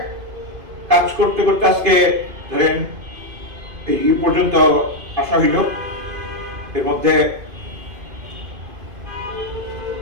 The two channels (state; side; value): late; left; 2.5 ms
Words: কাজ করতে করতে আজকে ধরেন এই পর্যন্ত আসা হইল। এর মধ্যে